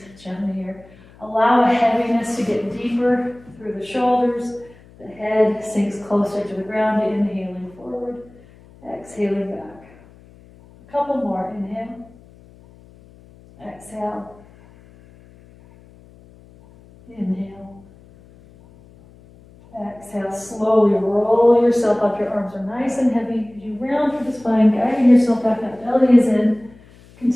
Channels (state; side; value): noise; left; hum, 25 dB below the sound